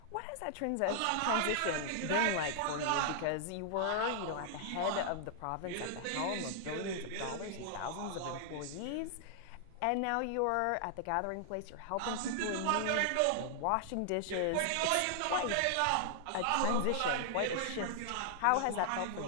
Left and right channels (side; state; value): both; different; correlation -0.01